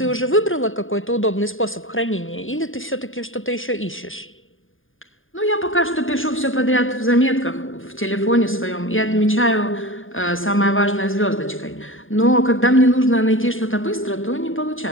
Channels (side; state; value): right; late; 0.59 ms